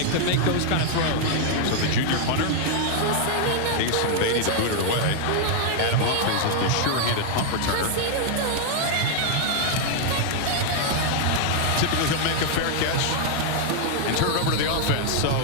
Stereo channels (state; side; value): different; both; correlation 0.00